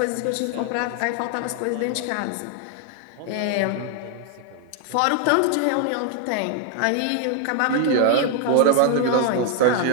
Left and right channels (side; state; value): both; different; correlation 0.00